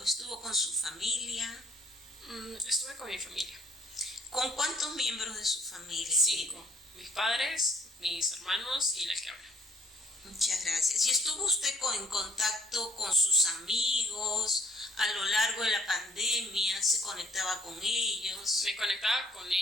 estuvo con su familia? Estuve con mi familia. ¿Con cuántos miembros de su familia? 5. Mis padres, mis hermanos y la que habla. Muchas gracias. ¿Y estuvo usted en contacto con sus amigos a lo largo de la pandemia? ¿Se conectaba con ellos? Me conectaba con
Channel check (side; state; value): both; normal; correlation 0.59